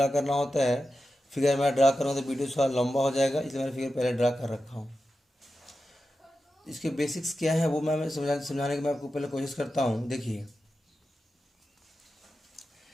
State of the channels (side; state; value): both; normal; correlation 0.91